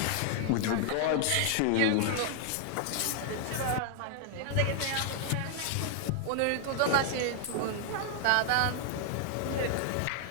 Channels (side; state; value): both; different; correlation 0.00